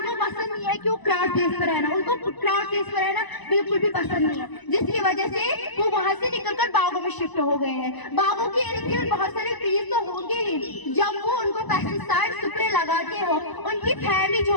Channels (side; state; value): right; late; 1.0 ms